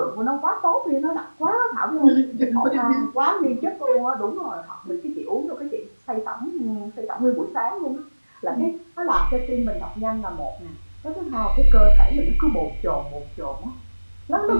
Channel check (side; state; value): both; inverted; correlation -1.00